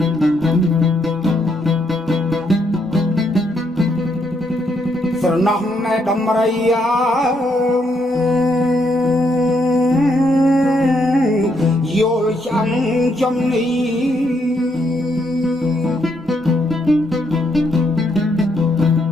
ស្រណោះណែដំរីយល់ចាំចំនេះ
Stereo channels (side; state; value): both; normal; correlation 0.75